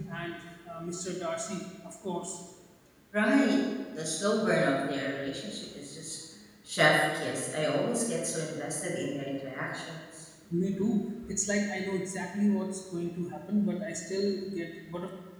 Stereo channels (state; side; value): identical; both; correlation 1.00